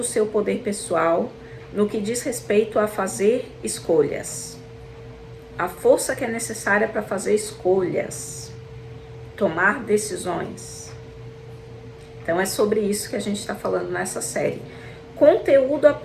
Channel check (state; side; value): identical; both; correlation 1.00